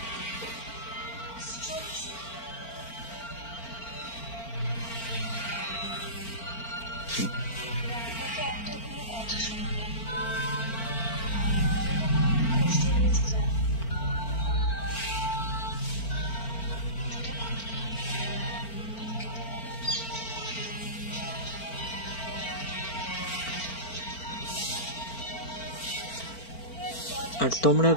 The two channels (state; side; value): late; right; 4.4 ms